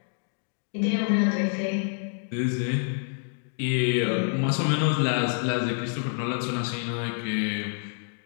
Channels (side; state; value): right; silent; 60 dB below the other